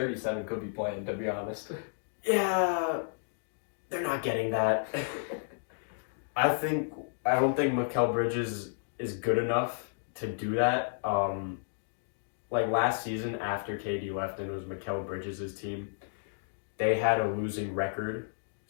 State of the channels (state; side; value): silent; right; digital silence